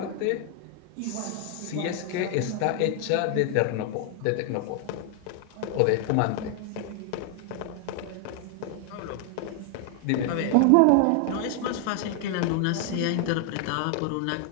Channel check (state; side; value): different; both; correlation 0.00